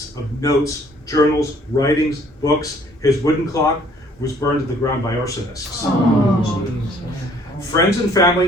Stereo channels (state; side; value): normal; both; correlation 0.59